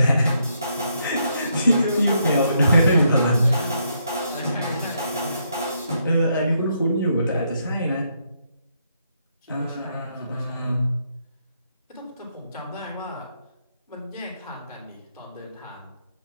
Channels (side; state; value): both; inverted; correlation -0.76